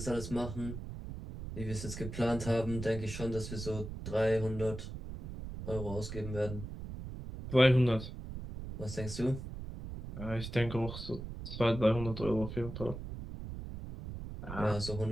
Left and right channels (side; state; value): right; noise; rumble, 8 dB below the sound